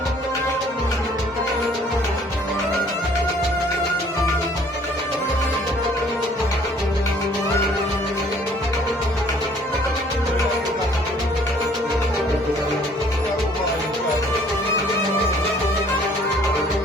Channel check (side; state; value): both; normal; correlation 0.58